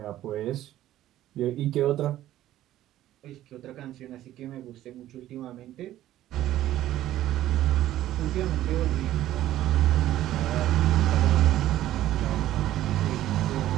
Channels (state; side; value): quieter; left; 13.6 dB